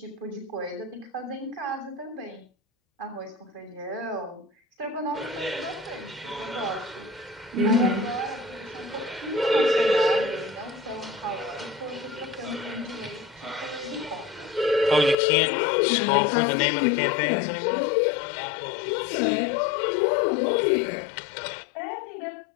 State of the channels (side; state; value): right; drops out; at 15.2 s